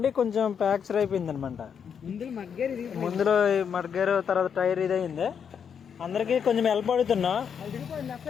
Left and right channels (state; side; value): quieter; right; 7.3 dB